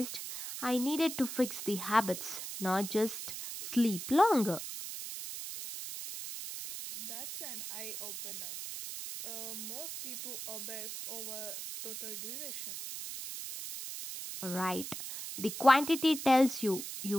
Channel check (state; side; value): noise; right; hiss, 7 dB below the sound